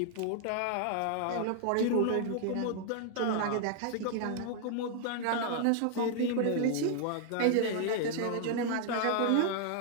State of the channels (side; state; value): both; different; correlation 0.00